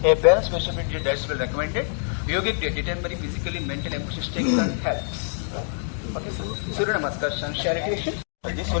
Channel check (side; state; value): right; silent; digital silence